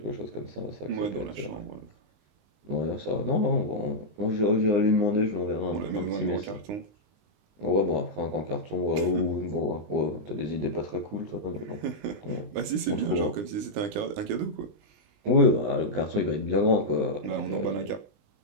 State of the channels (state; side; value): late; left; 20 ms